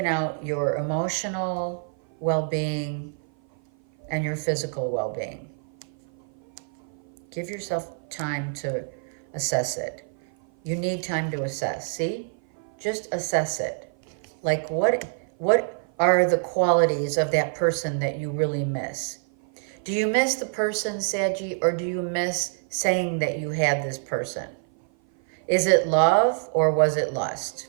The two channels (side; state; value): left; silent; 56 dB below the other